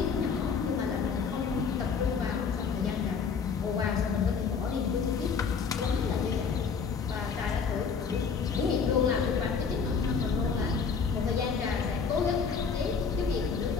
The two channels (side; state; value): right; quieter; 5.8 dB